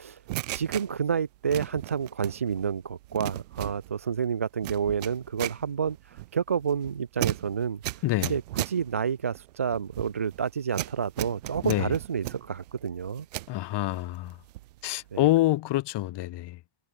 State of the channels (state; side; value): inverted; both; correlation -0.43